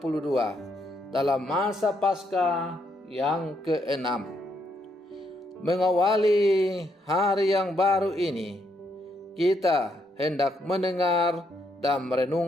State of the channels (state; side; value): normal; both; correlation 0.75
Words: dalam masa Paskah yang ke-6. Mengawali hari yang baru ini, kita hendak mendengar dan